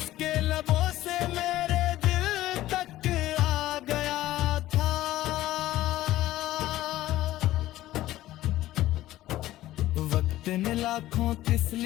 लबों से मेरे दिल तक आ गया था। वक्त ने लाखों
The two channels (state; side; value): quieter; right; 15.2 dB